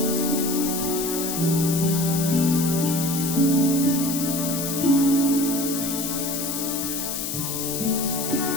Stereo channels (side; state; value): left; noise; hiss, 4 dB below the sound